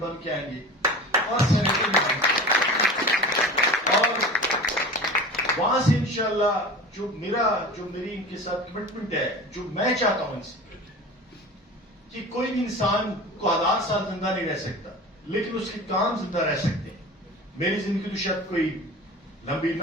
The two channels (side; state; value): both; normal; correlation 0.35